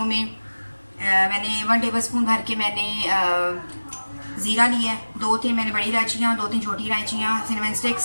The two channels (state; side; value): inverted; both; correlation -1.00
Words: में मैंने 1 टेबल स्पून भर के मैंने ज़ीरा लिया है, 2-3 मैंने बड़ी इलायचियाँ, 2-3 छोटी इलायचियाँ, सिनेमन स्टिक्स